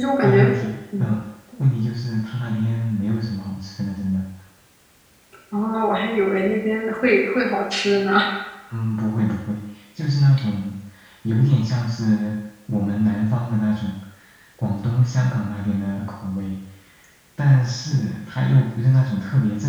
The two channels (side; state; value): both; identical; correlation 1.00